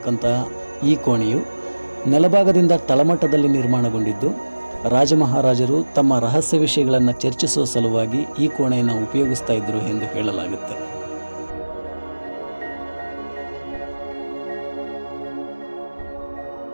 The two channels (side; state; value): both; inverted; correlation -1.00